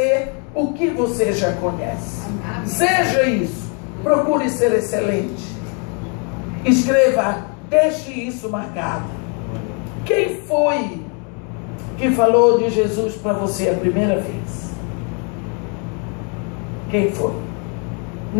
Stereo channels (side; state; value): right; quieter; 37.3 dB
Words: o que você já conhece. Seja isso, procure ser excelente. Escreva, deixe isso marcado. Quem foi que falou de Jesus para você a primeira vez? Quem foi?